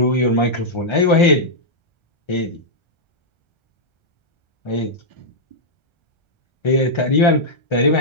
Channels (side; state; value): right; late; 1.3 ms